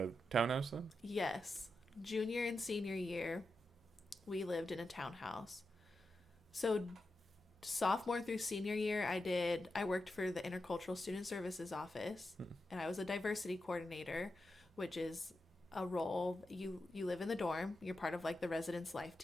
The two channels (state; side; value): normal; both; correlation 0.89